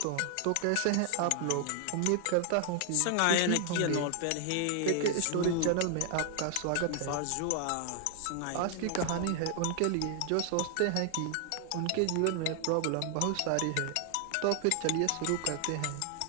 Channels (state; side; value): different; both; correlation 0.00